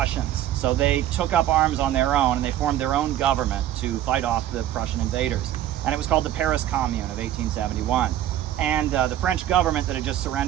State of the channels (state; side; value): quieter; left; 12.2 dB